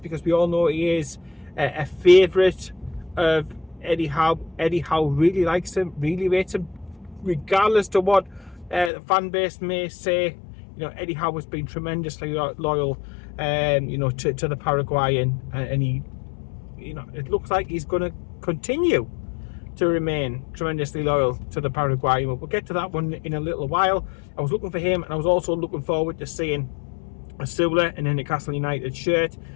because we all know he is a favourite of Eddie Howe. Eddie Howe really likes him, really rates him, regardless to what the fan base may say. You know, Eddie Howe has been tremendously loyal, you know, to the Paraguayan, and he, you know, it looks like he's going to continue to remain tremendously loyal to the Paraguayan. We'll get to that one in a little while. I was looking for him, and I was also looking forward to seeing Asula in a Newcastle United shirt,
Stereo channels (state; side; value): drops out; right; at 8.9 s